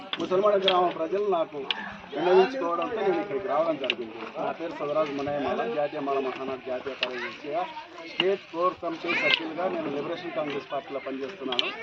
ముసల్మాన గ్రామ ప్రజలు నాకు విన్నవించుకోవడంతో నేను ఇక్కడికి రావడం జరిగింది. నా పేరు సదరాజు మునయ్యమాల, జాతీయ మాల మహానాడు జాతీయ కార్యదర్శిగా, స్టేట్ కోర్ కమిటీ సభ్యులుగా నేను లిబరేషన్ కాంగ్రెస్ పార్టీలో పనిచేస్తున్నాను.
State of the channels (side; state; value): both; identical; correlation 1.00